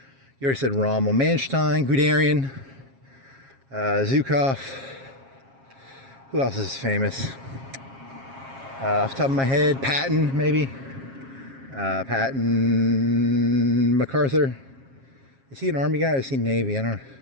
You already said Rommel. Manstein, Guderian, Zhukov. Who else is famous? Off the top of my head, Patton, maybe. Patton, MacArthur. Is he an Army guy or is he Navy? I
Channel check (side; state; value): left; late; 7.4 ms